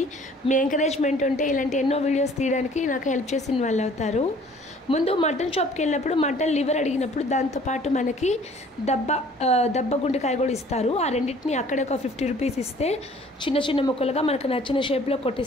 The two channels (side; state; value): both; normal; correlation 0.54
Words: మీ ఎంకరేజ్మెంట్ ఉంటే ఇలాంటి ఎన్నో వీడియోస్ తీయడానికి నాకు హెల్ప్ చేసిన వాళ్ళు అవుతారు. ముందు మటన్ షాప్కి వెళ్ళినప్పుడు మటన్ లివర్ అడిగినప్పుడు దాంతోపాటు మనకి దబ్బ గుండెకాయ కూడా ఇస్తారు. ఆ రెండింటిని అక్కడే ఒక 50 రూపీస్ ఇస్తే చిన్న ముక్కలుగా మనకు నచ్చిన షేప్లో